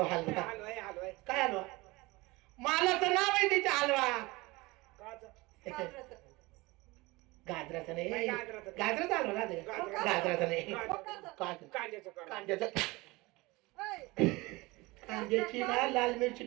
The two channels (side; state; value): left; quieter; 22.6 dB